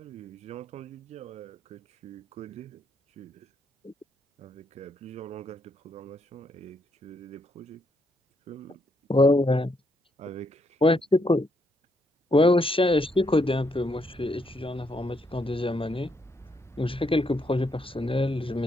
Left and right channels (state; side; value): normal; both; correlation 0.76